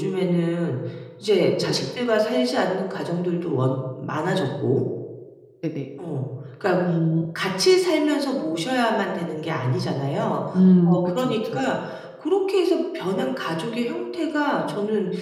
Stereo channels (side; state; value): both; identical; correlation 1.00